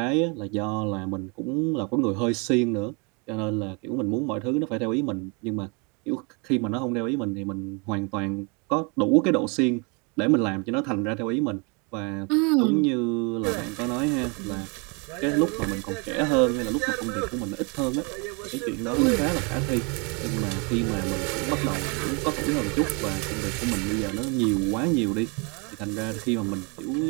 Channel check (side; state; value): left; quieter; 32.5 dB